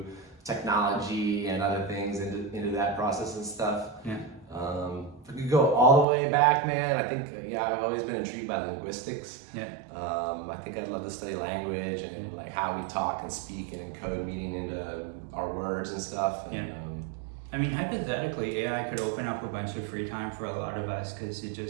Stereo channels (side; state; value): left; drops out; at 6.1 s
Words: technology and other things into that process and stuff. If I could go all the way back, man, I think I've always been intrigued by linguistics. I think I'd love to study language and like how we talk and speak and encode meaning into our words and stuff. I mean, hypothetically, AI could open up a bunch of free time for a lot of us because it